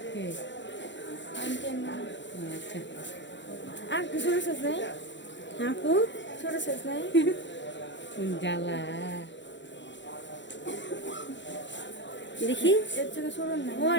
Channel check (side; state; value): right; late; 0.53 ms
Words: আনতেন না। আচ্ছা, আর কিছু শেষ নাই? হ্যাঁ আপু, ছোট শেষ নাই? কোন জ্বালা। দেখি। এর থেকে ছোট নাই?